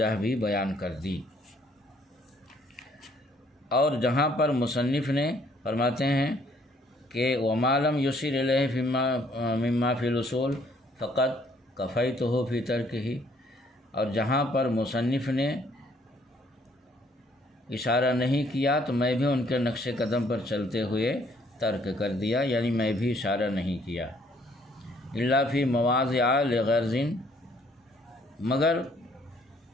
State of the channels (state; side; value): normal; both; correlation 0.64